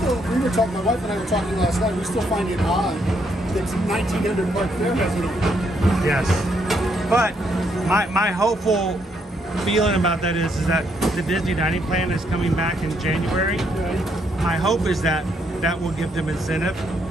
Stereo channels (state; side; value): normal; both; correlation 0.74